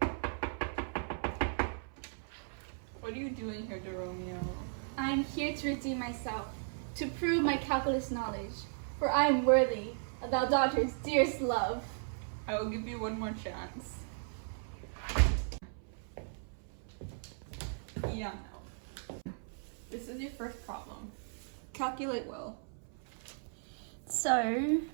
What are you doing here, Deromeo? I am here to redeem myself, to prove my calculus knowledge, for I am worthy of thou daughter's dearest love. I will give you one more chance. Yeah, no. This is your first problem. Calculate well. So,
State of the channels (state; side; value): silent; left; 54 dB below the other